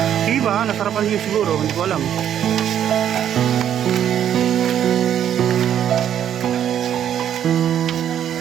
Diba, nasarapan niyo siguro, hindi ko alam.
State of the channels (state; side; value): quieter; left; 9.9 dB